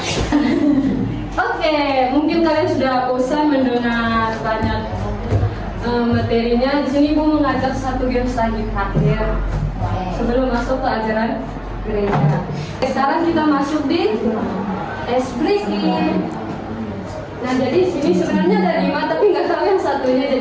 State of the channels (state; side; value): identical; both; correlation 1.00